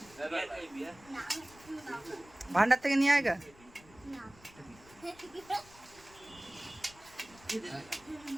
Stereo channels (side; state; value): left; noise; rumble, 24 dB below the sound